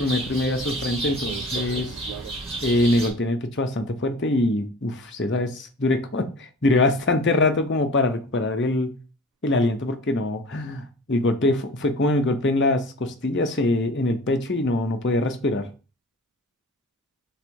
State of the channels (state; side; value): normal; both; correlation 0.41